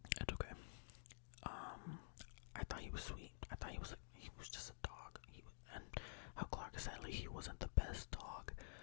It's okay. I thought he was sweet. I thought he was just a dog. And how Clark said like he wasn't the best dog,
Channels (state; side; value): silent; right; digital silence